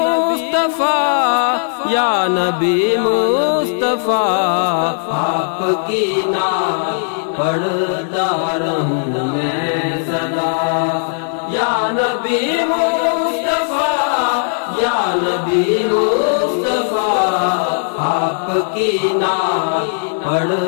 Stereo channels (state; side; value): silent; right; digital silence